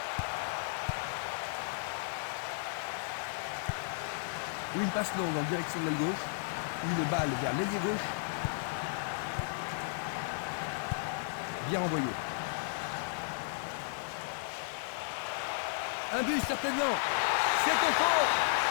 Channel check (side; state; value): right; silent; digital silence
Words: Une passe longue en direction de l'aile gauche. Une balle vers l'ailier gauche. Bien envoyé. Un but certainement. C'est au fond.